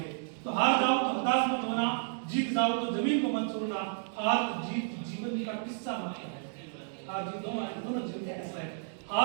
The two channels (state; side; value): silent; left; digital silence